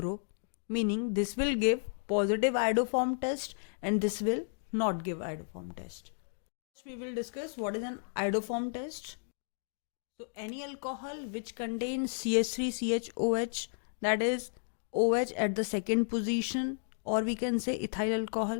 meaning this will give positive iodoform test and this will not give iodoform test. We will discuss what is an iodoform test. So any alcohol which contains CH3CHOH, that is OH at the second position, or we can say ethyl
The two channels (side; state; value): right; silent; digital silence